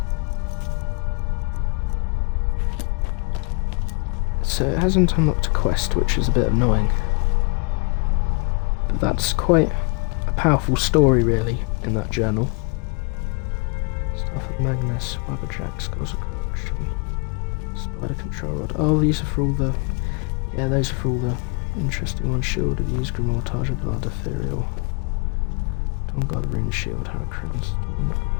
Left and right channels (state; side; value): quieter; right; 34.3 dB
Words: so it hasn't unlocked a quest, which is a bit annoying. But that's quite a powerful story, really, in that journal. Staff of Magnus, Wabberjack, Scores of Corruption, Spider Control Rod. Oh, these are for all the... Yeah, those are for all the interesting ones. Shield of Use, Grimoire, of Blood, Ethereal. Dawn God, Rune Shield, Hurricanes. Oh my god.